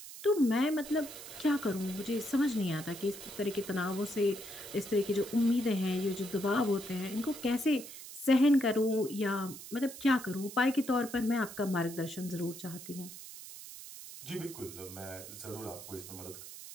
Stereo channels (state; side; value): noise; right; hiss, 13 dB below the sound